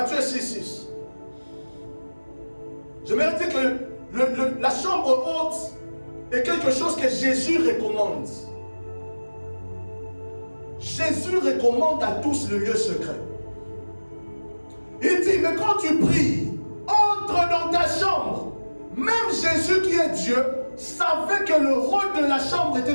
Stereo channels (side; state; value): both; inverted; correlation -1.00